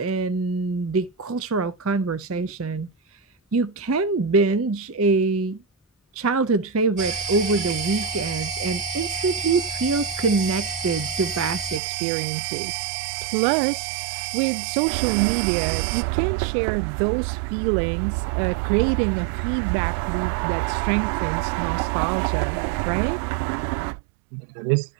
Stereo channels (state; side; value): drops out; left; at 11.8 s